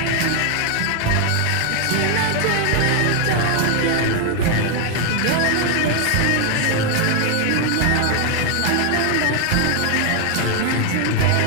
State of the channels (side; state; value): both; different; correlation 0.00